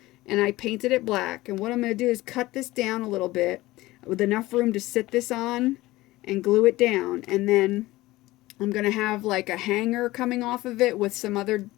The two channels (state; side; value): quieter; right; 18.5 dB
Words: and I painted it black. And what I'm going to do is cut this down a little bit with enough room to sit this on and glue it down. And then I'm going to have like a hanger coming off of it with some other